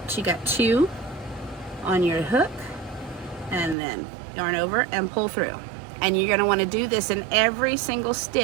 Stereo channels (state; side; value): drops out; left; at 3.8 s